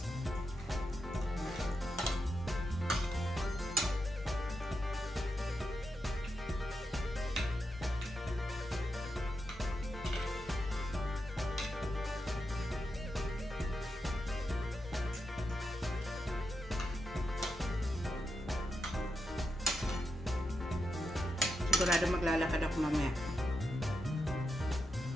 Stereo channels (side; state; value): both; normal; correlation 0.86